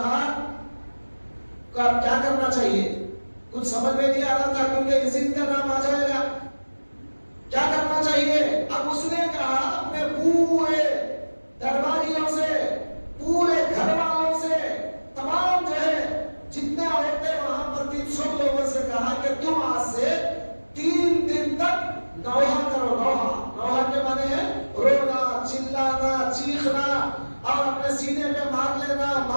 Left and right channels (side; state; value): both; inverted; correlation -1.00